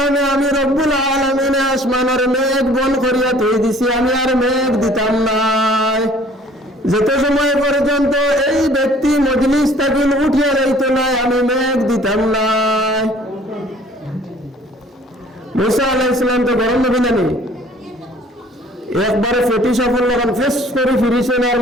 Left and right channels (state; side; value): normal; both; correlation 0.54